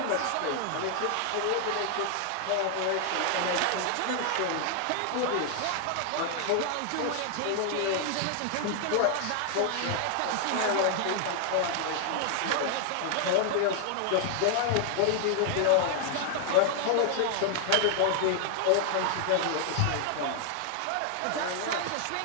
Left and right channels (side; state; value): both; different; correlation 0.00